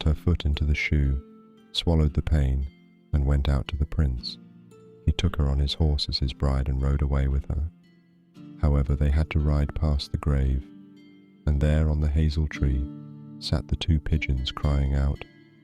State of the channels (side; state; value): both; identical; correlation 1.00